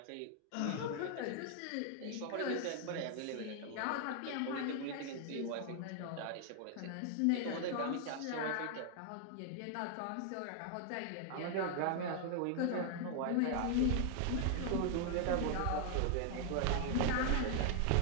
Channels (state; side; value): different; both; correlation 0.00